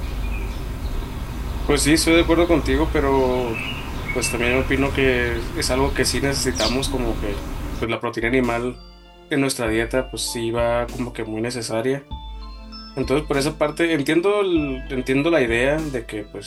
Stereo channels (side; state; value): both; identical; correlation 1.00